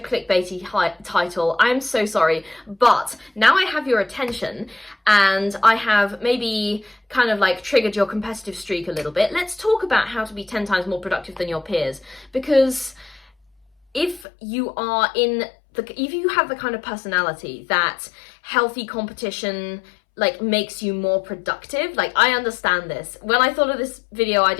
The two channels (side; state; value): right; drops out; at 14.2 s